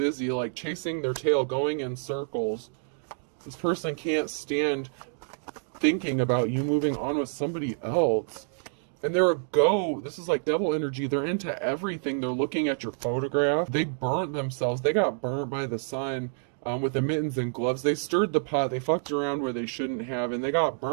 like chasing their tail, going in circles. This person can't stand thinking about you moving on with somebody else. And they're a go. This is like devil energy. They're into everything. They're looking at your photograph. They burnt themselves. They got burnt by the sun with the mittens and gloves. They stirred the pot. They fucked around where they shouldn't have, and they got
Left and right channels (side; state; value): left; silent; digital silence